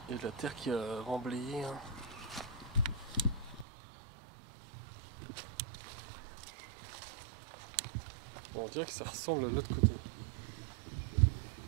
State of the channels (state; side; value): drops out; left; at 3.7 s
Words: il y a de la terre qui a remblayé. Hein. Bon, on dirait que ça ressemble à l'autre côté.